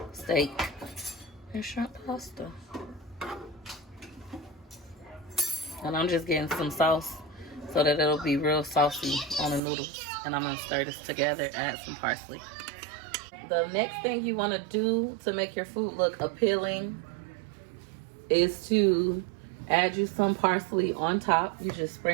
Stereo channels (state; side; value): drops out; left; at 9.6 s